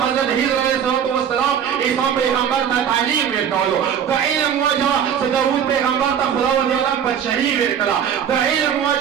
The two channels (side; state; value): left; quieter; 8.5 dB